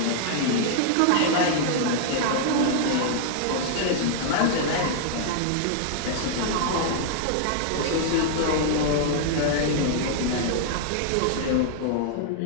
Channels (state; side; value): different; both; correlation -0.01